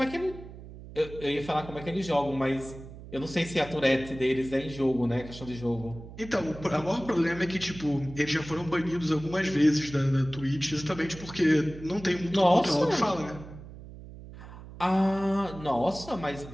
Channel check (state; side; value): noise; right; hum, 15 dB below the sound